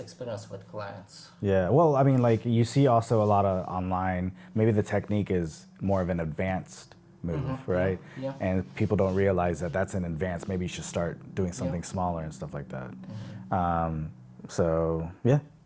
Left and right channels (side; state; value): both; identical; correlation 1.00